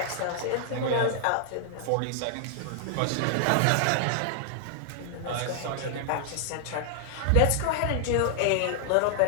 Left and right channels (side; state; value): both; different; correlation -0.01